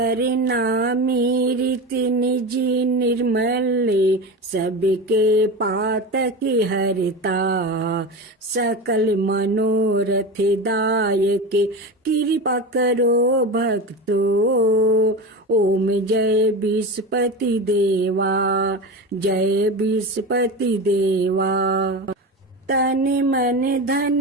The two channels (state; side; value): normal; both; correlation 0.25